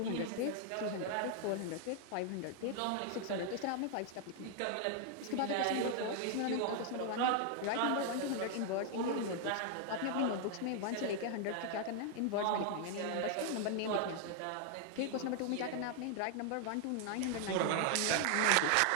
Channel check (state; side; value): different; both; correlation 0.00